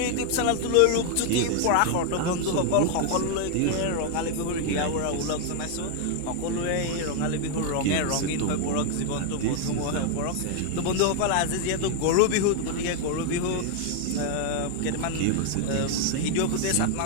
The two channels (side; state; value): both; different; correlation 0.00